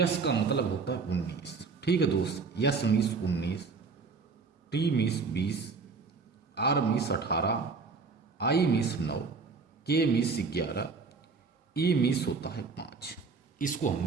का मतलब होता है 19। ठीक है दोस्त, S means 19, T means 20, R means 18, I means 9, K means 11, E means होता है 5। इसको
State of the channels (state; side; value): quieter; left; 4.7 dB